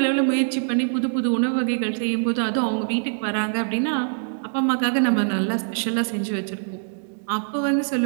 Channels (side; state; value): left; silent; digital silence